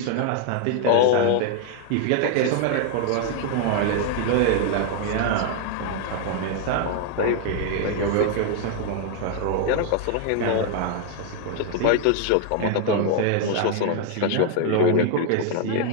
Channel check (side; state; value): both; different; correlation 0.00